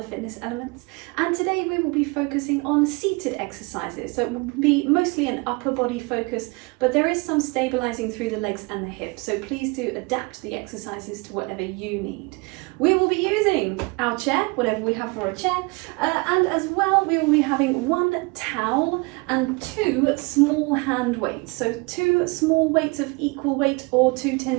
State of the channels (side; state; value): left; quieter; 27.9 dB